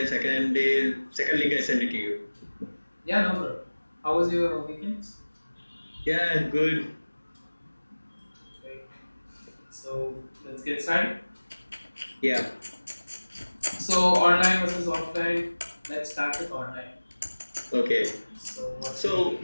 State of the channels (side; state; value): both; inverted; correlation -1.00